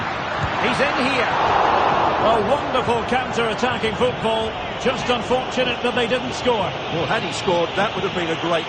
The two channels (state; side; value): identical; both; correlation 1.00